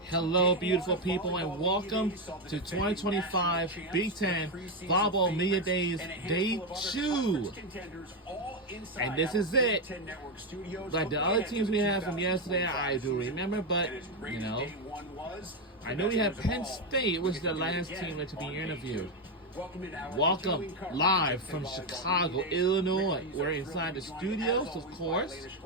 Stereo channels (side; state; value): both; normal; correlation 0.07